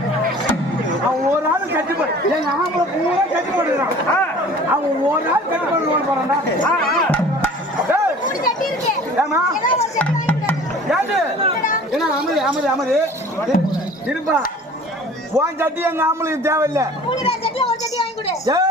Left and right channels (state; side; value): normal; both; correlation 0.46